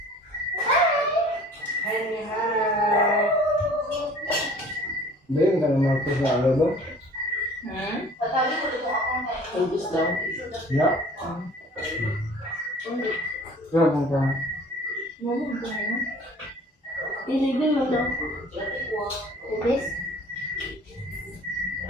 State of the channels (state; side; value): normal; both; correlation 0.49